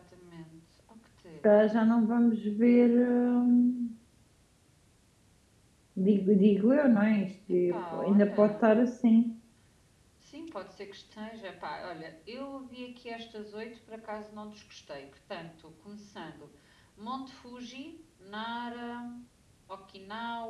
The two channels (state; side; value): identical; both; correlation 1.00